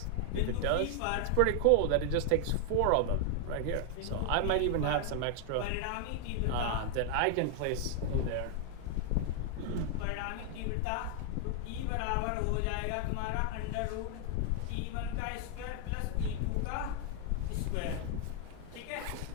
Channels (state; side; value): different; both; correlation 0.00